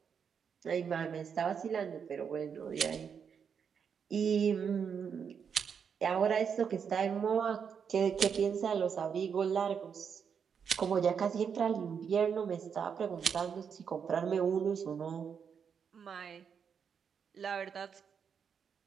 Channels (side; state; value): left; quieter; 6.9 dB